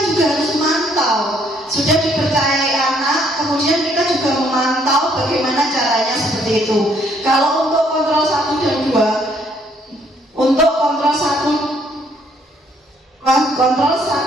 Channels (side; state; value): both; normal; correlation 0.66